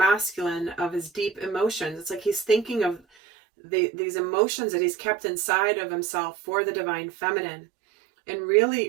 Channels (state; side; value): drops out; left; at 3.0 s